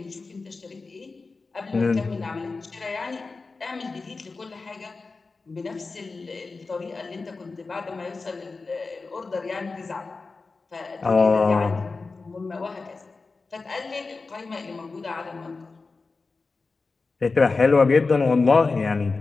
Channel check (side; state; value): right; quieter; 4.0 dB